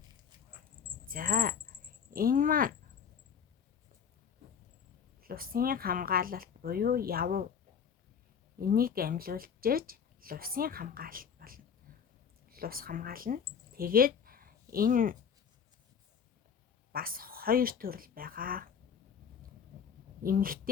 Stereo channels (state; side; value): quieter; right; 7.2 dB